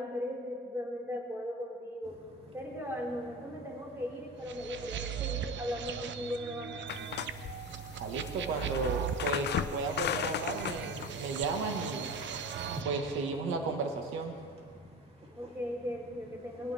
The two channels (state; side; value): normal; both; correlation 0.31